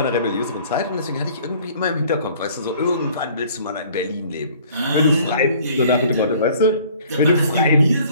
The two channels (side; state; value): both; inverted; correlation -0.54